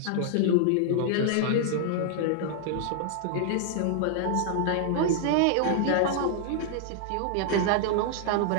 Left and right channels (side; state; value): both; different; correlation -0.01